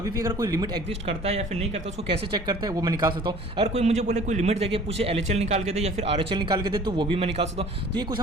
भी अगर कोई लिमिट एग्जिस्ट करता है या फिर नहीं करता उसको कैसे चेक करता है वो मैं निकाल सकता हूँ। अगर कोई मुझे बोले कोई लिमिट देके पूछे LHL निकाल के दे या फिर RHL निकाल के दे तो वो भी मैं निकाल सकता हूँ। तो ये कुछ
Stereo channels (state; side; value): normal; both; correlation 0.48